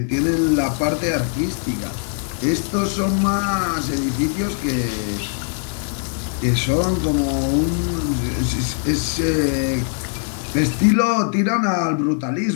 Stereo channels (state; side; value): silent; right; 65 dB below the other